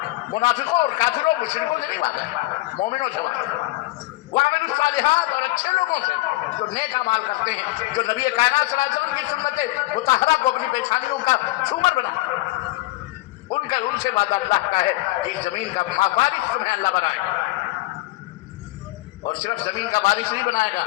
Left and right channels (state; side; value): quieter; right; 19.8 dB